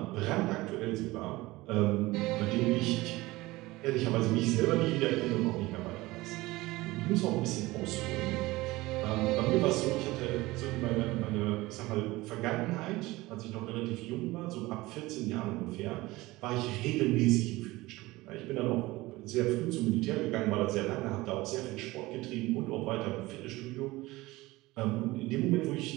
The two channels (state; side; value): quieter; left; 19.9 dB